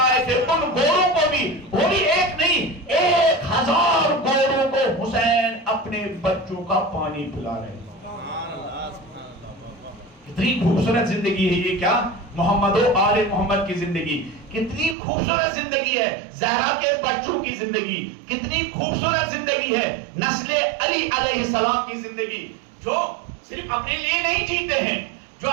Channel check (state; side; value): drops out; left; at 15.0 s